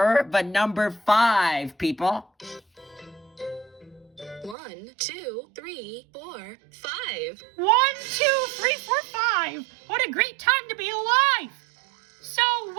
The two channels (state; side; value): drops out; left; at 4.5 s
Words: the number 5, people. 1, 2, 3, 4, 5. 1, 2, 3, 4, 5. What a great time to be alive. So, wait